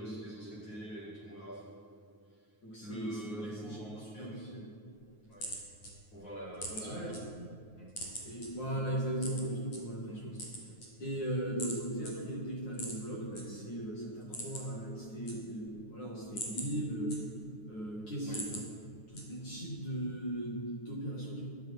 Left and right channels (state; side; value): late; right; 9.5 ms